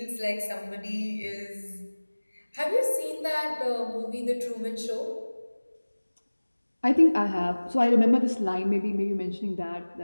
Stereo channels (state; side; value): inverted; both; correlation -1.00